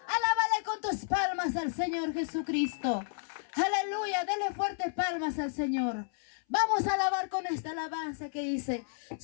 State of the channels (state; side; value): silent; right; 57 dB below the other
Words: Alábale con tus palmas al Señor Jesucristo. Aleluya, dale fuerte palmas al Señor. Vamos a alabar con esta alabanza que dice: